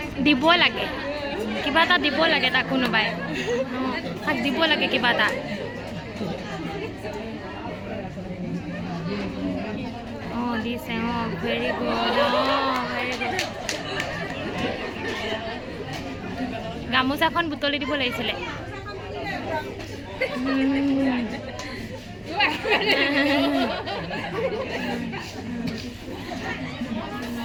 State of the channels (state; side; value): identical; both; correlation 1.00